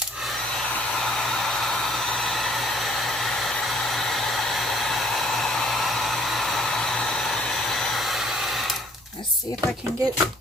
let's see if I can get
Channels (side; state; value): both; normal; correlation 0.59